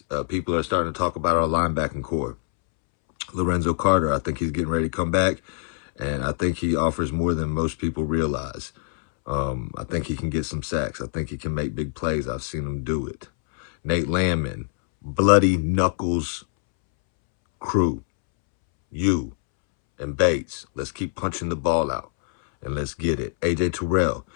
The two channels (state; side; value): silent; right; 62 dB below the other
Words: People are starting to talk about our linebacking core. Lorenzo Carter, I think he's getting ready to come back, and I think he offers more than most people realize. I think he can get some sacks. I think he can make big plays. I've seen him do it. Nate Landman, Bloody Knuckles crew, you and Bates, let's keep punching the ball out and let's get it. AJ Terrell,